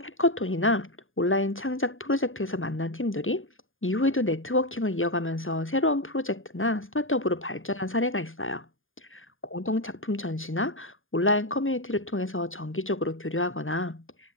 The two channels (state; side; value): late; right; 0.59 ms